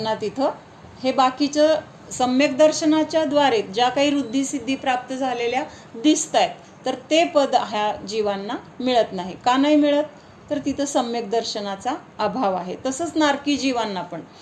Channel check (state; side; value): identical; both; correlation 1.00